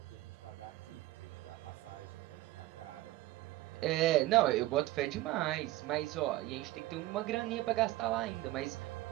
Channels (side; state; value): left; quieter; 17.3 dB